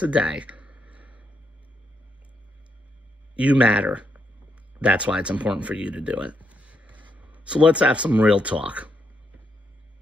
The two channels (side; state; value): both; normal; correlation 0.78